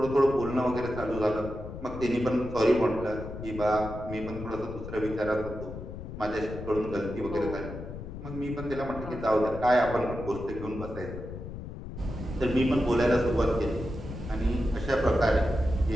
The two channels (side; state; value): left; noise; rumble, 10 dB below the sound